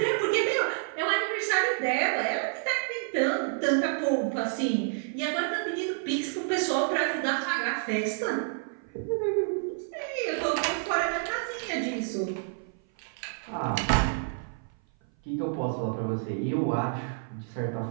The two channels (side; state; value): left; silent; 56 dB below the other